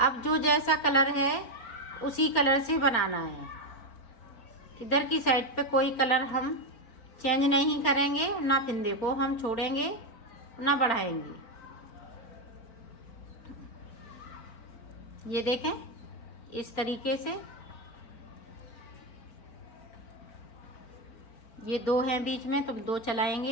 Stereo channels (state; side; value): late; right; 4.4 ms